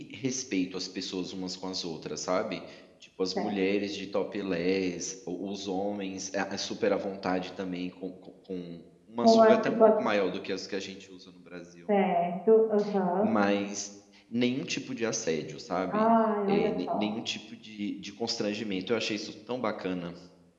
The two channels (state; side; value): identical; both; correlation 1.00